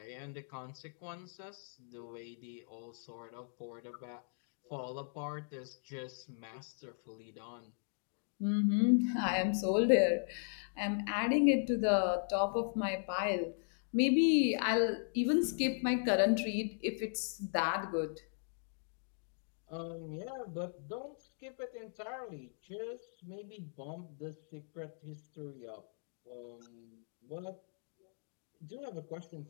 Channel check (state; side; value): silent; right; digital silence